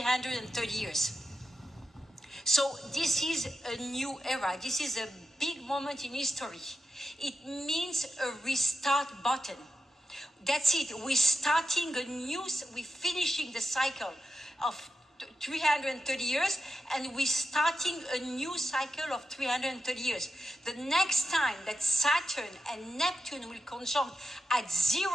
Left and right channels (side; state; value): both; normal; correlation 0.88